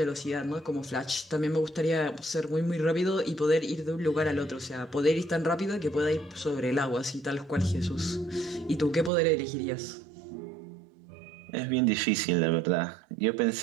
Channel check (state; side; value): drops out; left; at 9.1 s